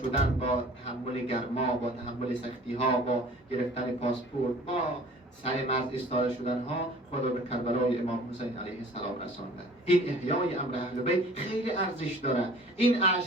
با تحمل گرما، با تحمل سختی ها، با گرفتن پاسپورت، با سر مرز ایستاده شدن ها، خود را به کربلای امام حسین علیه السلام رسانده. این احیای امر اهل بیت خیلی ارزش داره. این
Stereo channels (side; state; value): both; normal; correlation 0.48